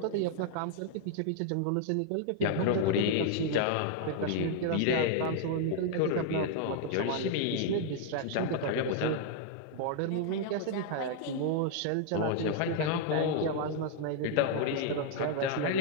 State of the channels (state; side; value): different; both; correlation -0.01